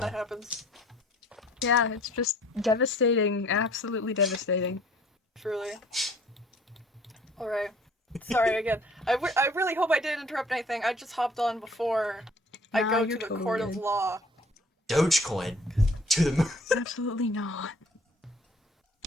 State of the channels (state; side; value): normal; both; correlation 0.54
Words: you know? that happens. Yeah, it's just devastating, absolutely devastating. Truly. Alright. Sorry again. I really hope I didn't interrupt anything. I just hopped on before I Nah, go to you're the totally court of good. law. Dogecoin to the moon. Absolutely not.